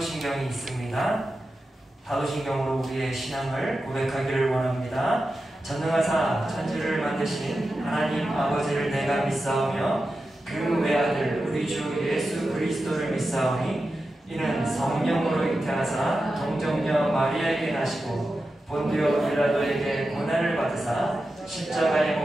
있습니다. 사도신경으로 우리의 신앙을 고백하기를 원합니다. 전능하사 천지를 만드신 하나님 아버지를 내가 믿사오며 그 외아들 우리 주 예수 그리스도를 믿사오니 이는 성령으로 잉태하사 동정녀 마리아에게 나시고 본디오 빌라도에게 고난을 받으사 십자가에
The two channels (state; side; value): normal; both; correlation 0.91